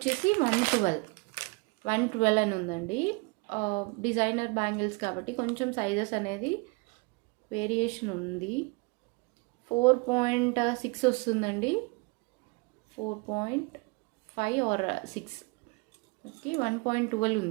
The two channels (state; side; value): quieter; left; 28.7 dB